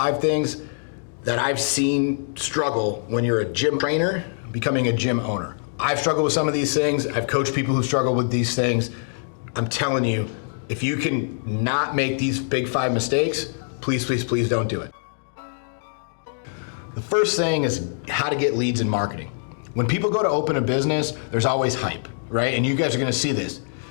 things that I've seen struggle when you're a gym trainer becoming a gym owner. I've struggled with some of these things. I've coached people who struggle with these things. I'm telling you, if you can not make these big 5 mistakes, please, please, please don't do it. The first thing is how to get leads in marketing. When people go to open a business, there's always hype, right? And you guys are gonna see this.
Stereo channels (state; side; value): silent; right; digital silence